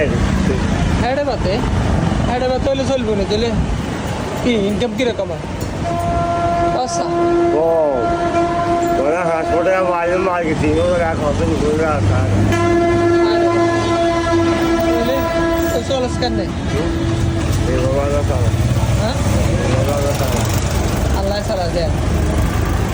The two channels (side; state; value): both; identical; correlation 1.00